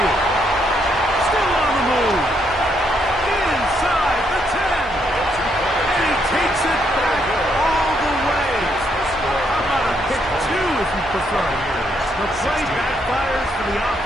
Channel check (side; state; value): both; normal; correlation 0.75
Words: Still The play backfires for the